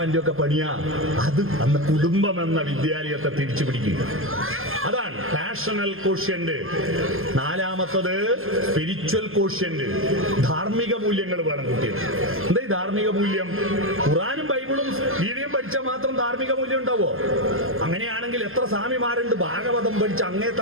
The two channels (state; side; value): late; left; 0.60 ms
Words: ഒക്കെ പണിയാ. അത് അന്ന് കുടുംബം എന്ന വിദ്യാലയത്തെ തിരിച്ചു പിടിക്കുക. അതാണ് പാഷണൽ കോഷ്യന്റ്. നാലാമത്തത് സ്പിരിച്വൽ കോഷ്യന്റ്. ധാർമ്മിക മൂല്യങ്ങൾ വേണം കുട്ടികൾ. എന്താ ഈ ധാർമ്മിക മൂല്യം? ഖുറാനും ബൈബിളും ഗീതയും പഠിച്ചാൽ മാത്രം ധാർമ്മിക മൂല്യം ഉണ്ടാവോ? അങ്ങനെയാണെങ്കിൽ എത്ര സ്വാമിമാരുണ്ട് ഭാഗവതം പഠിച്ച് അങ്ങേ